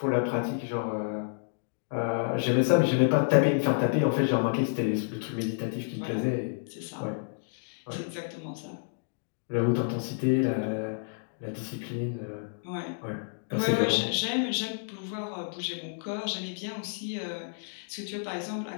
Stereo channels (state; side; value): silent; right; digital silence